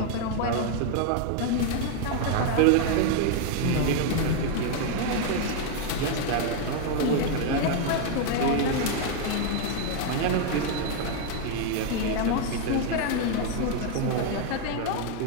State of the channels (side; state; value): both; different; correlation 0.00